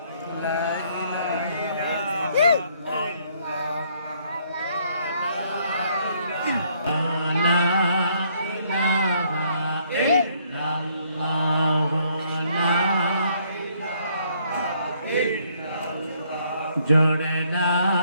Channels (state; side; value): inverted; both; correlation -0.67